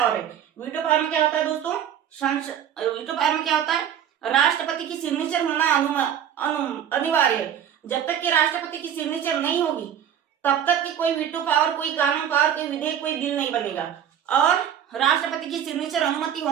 है। वीटो पावर में क्या होता है दोस्तों, वीटो पावर में क्या होता है, राष्ट्रपति की सिग्नेचर होना अनिवार्य है। जब तक कि राष्ट्रपति की सिग्नेचर नहीं होगी, तब तक कि कोई वीटो पावर, कोई कानून पावर, कोई विधेयक, कोई बिल नहीं बनेगा। और राष्ट्रपति की सिग्नेचर, अनुमति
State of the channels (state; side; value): quieter; left; 9.5 dB